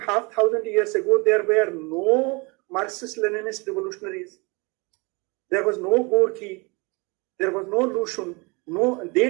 years ago there were no Marxist-Leninist revolutionaries. There was no Gorky, there was no Lushun,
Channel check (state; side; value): quieter; left; 28.4 dB